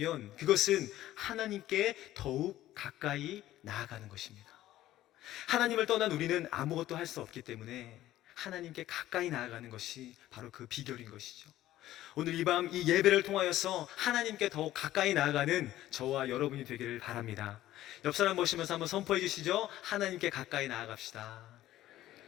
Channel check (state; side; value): quieter; right; 14.3 dB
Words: 그것은 하나님께 더욱 가까이 나아가는 것입니다. 하나님을 떠난 우리는 아무것도 할 수 없기 때문에 하나님께 가까이 나아가는 것이 바로 그 비결인 것이죠. 오늘 이 밤 이 예배를 통하여서 하나님께 더욱 가까이 나아가는 저와 여러분이 되기를 바랍니다. 옆 사람 보시면서 한번 선포해 주시죠. 하나님께 가까이 나아갑시다.